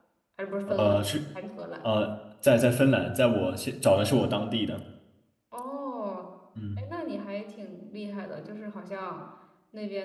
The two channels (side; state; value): both; identical; correlation 1.00